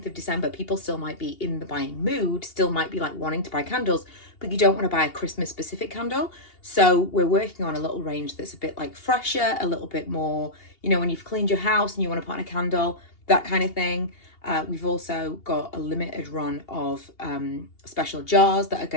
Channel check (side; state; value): right; late; 2.8 ms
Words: of December, people still might be in the buying mood, still might be like wanting to buy candles, but you don't want to buy a Christmas specific candle. So we're working on a little range that's a bit like fresher, a little bit more, you know, when you've cleaned your house and you want to put on a candle, that kind of thing. We've also got a limited run of special jars that are